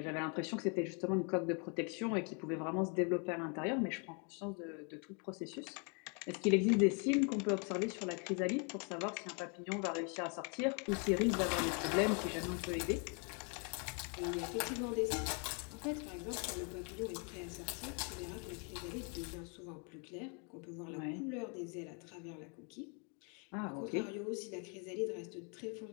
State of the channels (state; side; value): quieter; right; 36.6 dB